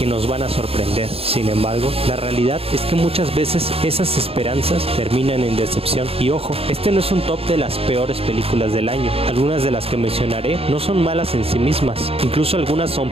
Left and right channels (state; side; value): late; left; 0.28 ms